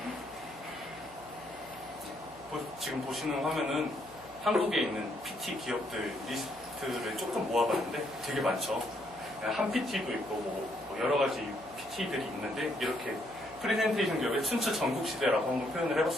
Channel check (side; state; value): right; noise; hum, 23 dB below the sound